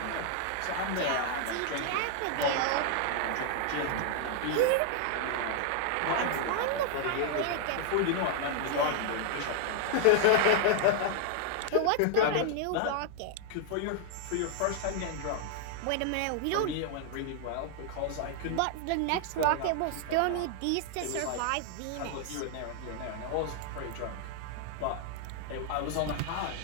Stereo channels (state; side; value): different; both; correlation 0.00